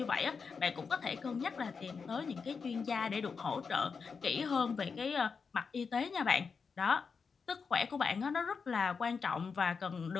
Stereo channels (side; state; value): right; quieter; 5.4 dB